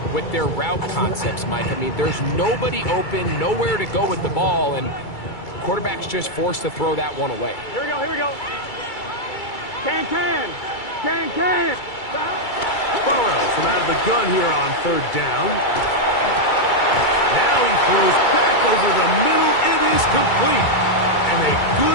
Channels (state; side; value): late; right; 2.3 ms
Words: with their route concepts, Mike. I mean, there's nobody open, nowhere to go with the ball, and quarterback's just forced to throw that one away. Here we go, here we go. Can. Stop. Burrow from out of the gun here on 3rd down. Now he throws back over the middle. It is complete. And a